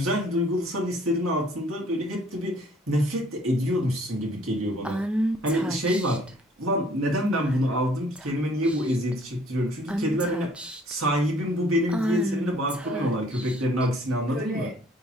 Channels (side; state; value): both; normal; correlation 0.58